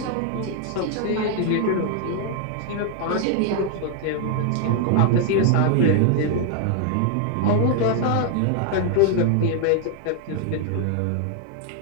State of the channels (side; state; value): both; different; correlation 0.00